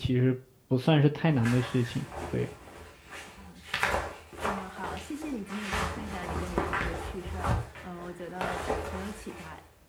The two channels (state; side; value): identical; both; correlation 1.00